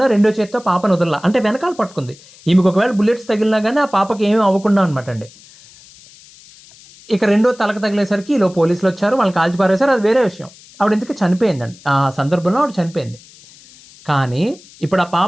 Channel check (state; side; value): noise; left; hiss, 24 dB below the sound